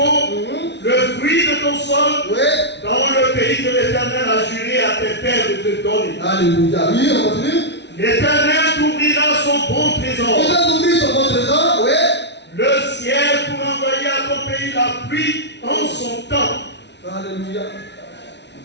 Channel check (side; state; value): right; late; 0.50 ms